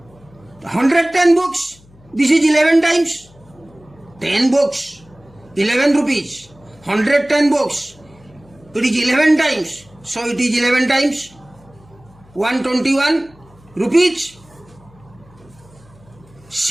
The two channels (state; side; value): noise; left; hum, 27 dB below the sound